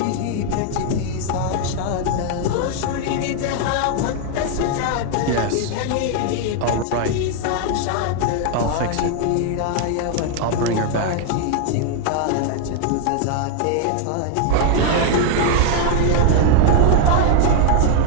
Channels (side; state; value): both; different; correlation 0.00